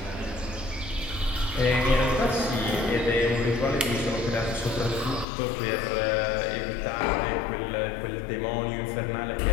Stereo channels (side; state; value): right; drops out; at 5.2 s